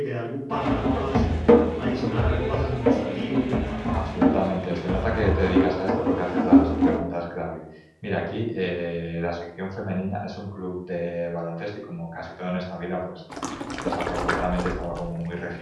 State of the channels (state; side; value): identical; both; correlation 1.00